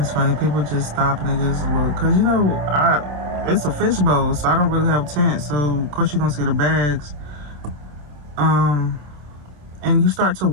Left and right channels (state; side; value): late; left; 27 ms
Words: funny. People just stop and they just look. Because, you know, it's a fishbowl, so I don't really have tents. So, of course, you're going to see the bags. And you start to